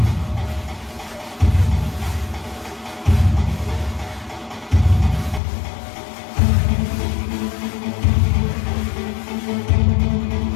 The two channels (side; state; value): right; drops out; at 5.4 s